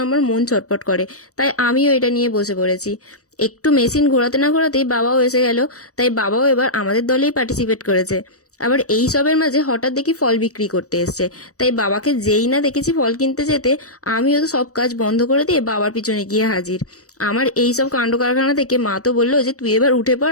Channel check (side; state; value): right; late; 0.66 ms